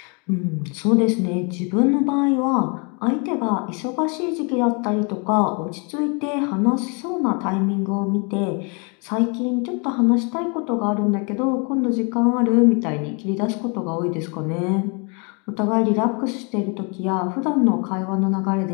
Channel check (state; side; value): quieter; right; 34.0 dB